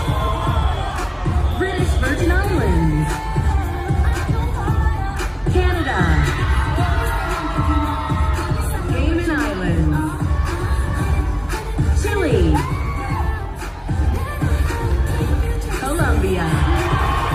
British Virgin Islands, Canada, Cayman Islands, Chile, Colombia,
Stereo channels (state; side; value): identical; both; correlation 1.00